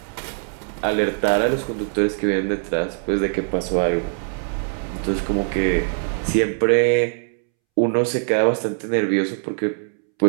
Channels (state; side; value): silent; left; 64 dB below the other